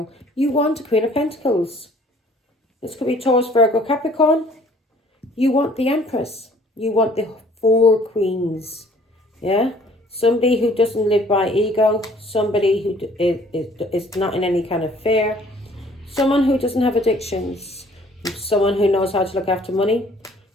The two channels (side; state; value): both; normal; correlation 0.56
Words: You want a Queen of Pentacles. This could be Taurus, Virgo, Capricorn. You want the Empress. You want the 4 queens. Yeah? Somebody who doesn't live by ego. Somebody who is not in any kind of fear. Someone who doesn't have addictions. Someone who knows how to look after money.